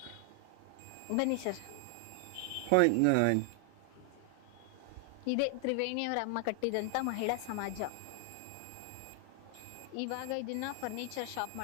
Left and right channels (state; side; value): different; both; correlation 0.00